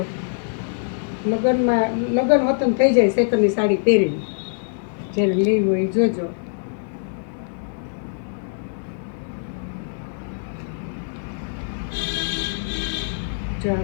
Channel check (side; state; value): right; silent; 63 dB below the other